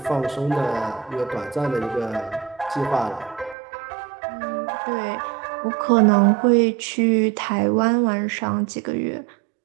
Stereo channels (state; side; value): drops out; left; at 3.6 s